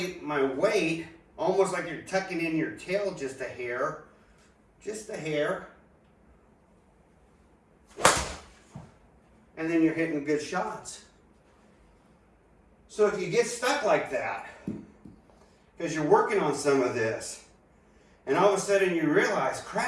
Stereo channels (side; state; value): both; identical; correlation 1.00